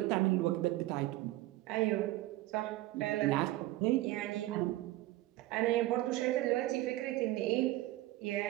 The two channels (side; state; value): left; quieter; 17.2 dB